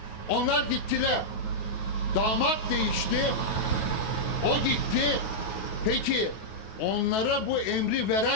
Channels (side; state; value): right; late; 9.3 ms